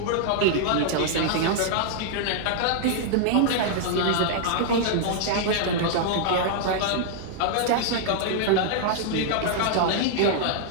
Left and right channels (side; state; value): both; different; correlation -0.01